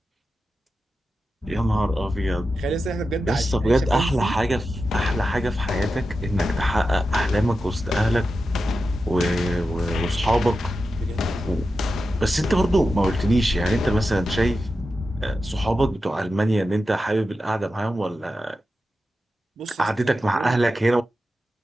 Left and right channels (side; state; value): both; normal; correlation 0.91